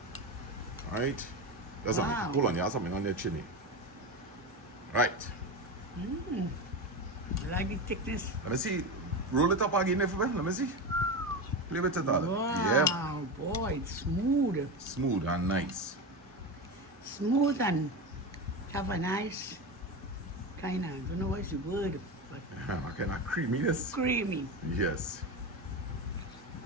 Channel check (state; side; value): normal; both; correlation 0.20